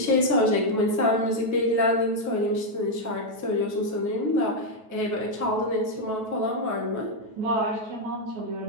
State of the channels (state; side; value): late; left; 9.2 ms